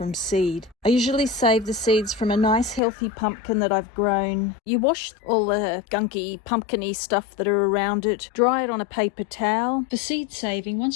seed. I usually save the seeds from a nice healthy pumpkin that I've grown. You wash all the gunky pumpkin-y stuff that are around it, dry it on a paper towel. For seed saving,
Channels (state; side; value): drops out; right; at 2.8 s